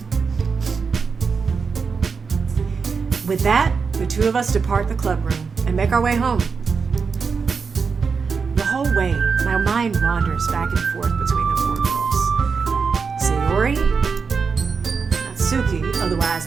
With that, the two of us depart the club room and make our way home. The whole way, my mind wanders back and forth between the four girls. Sayori, Natsuki,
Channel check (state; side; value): quieter; left; 5.4 dB